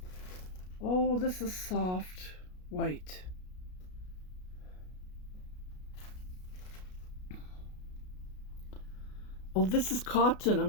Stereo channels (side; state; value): right; late; 33 ms